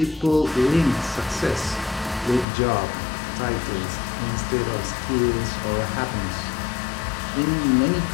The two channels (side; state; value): right; drops out; at 2.5 s